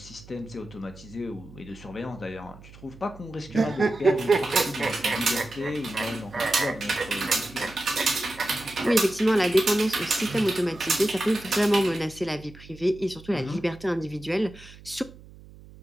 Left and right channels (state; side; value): noise; right; hum, 20 dB below the sound